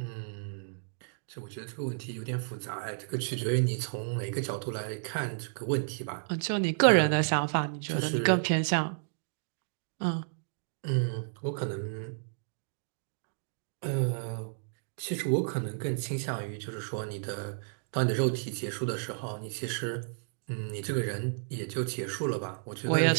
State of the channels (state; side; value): silent; left; digital silence